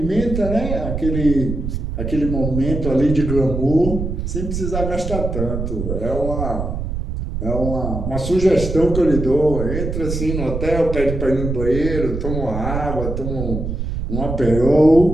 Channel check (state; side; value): noise; right; rumble, 4 dB below the sound